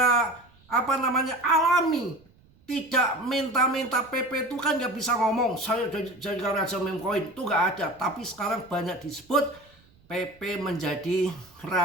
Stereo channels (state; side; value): noise; right; rumble, 30 dB below the sound